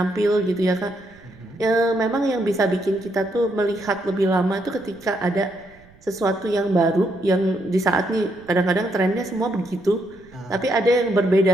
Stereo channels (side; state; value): right; noise; rumble, 27 dB below the sound